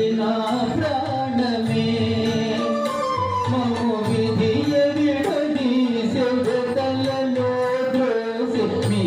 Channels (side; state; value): both; identical; correlation 1.00